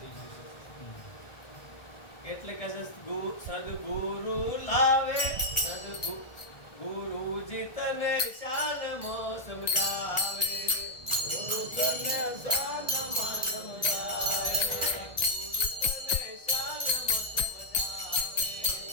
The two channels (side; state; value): right; late; 1.6 ms